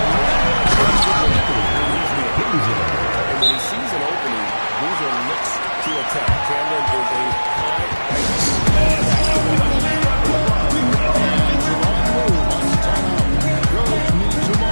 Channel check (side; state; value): both; inverted; correlation -1.00